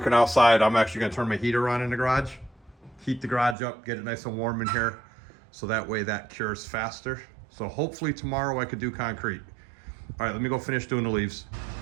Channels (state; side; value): drops out; left; at 3.6 s